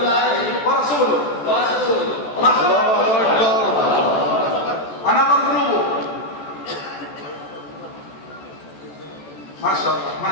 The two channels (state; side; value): late; right; 14 ms